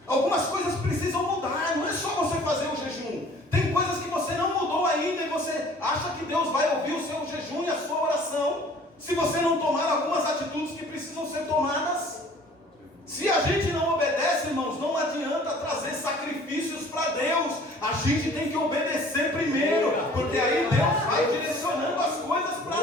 Algumas coisas precisam mudar, não é só você fazer o jejum. Tem coisas que você não mudou ainda, e você acha que Deus vai ouvir o seu jejum e a sua oração, se você não tomar algumas atitudes que precisam ser tomadas. Se a gente não obedece, irmãos, não adianta trazer sacrifícios para Deus. A gente tem que obedecer primeiro, porque aí Deus vai direcionando as coisas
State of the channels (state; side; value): normal; both; correlation 0.51